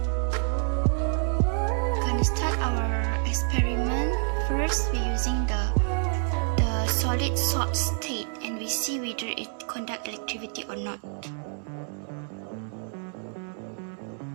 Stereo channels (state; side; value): silent; left; 55 dB below the other